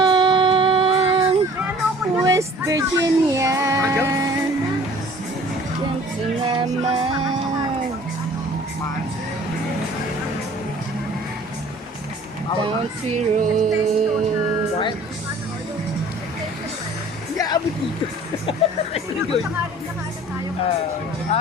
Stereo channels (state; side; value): normal; both; correlation 0.50